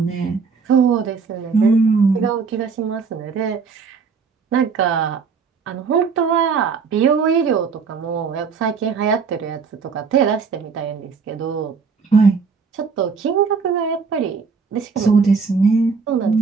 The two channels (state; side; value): quieter; left; 5.4 dB